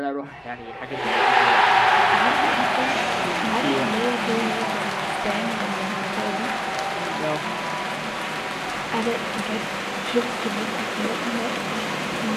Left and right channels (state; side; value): identical; both; correlation 1.00